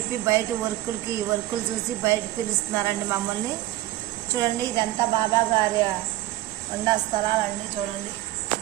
బయట వర్కులు చూసి బయట పిలుస్తున్నారండి మమ్మల్ని. చూడండి ఇదంతా బాబా గారి ఉండా స్థలాలండి. చూడండి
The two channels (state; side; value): quieter; left; 16.2 dB